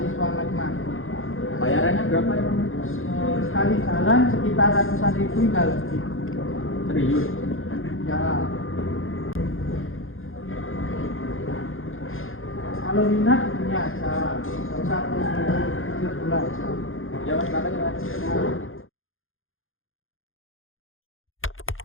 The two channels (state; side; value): late; right; 0.59 ms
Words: mati-mati. Bayarannya berapa ya Mas? Sekali jalan sekitar ratusan ribu hingga lebih. Serius? Ya. Kalau minat ini aja, nggak usah terus dulu aja. Ya Mas, makasih Mas. Ya.